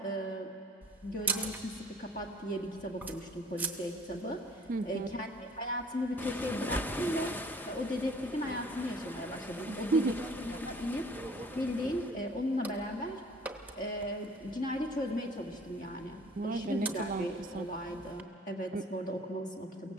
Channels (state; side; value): normal; both; correlation 0.53